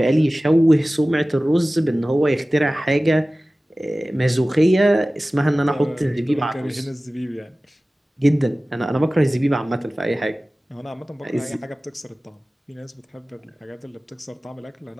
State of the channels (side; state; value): both; normal; correlation 0.97